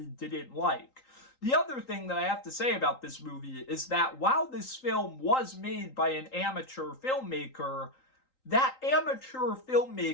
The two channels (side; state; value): right; late; 3.8 ms